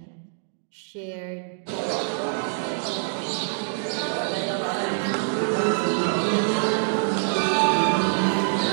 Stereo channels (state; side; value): silent; left; digital silence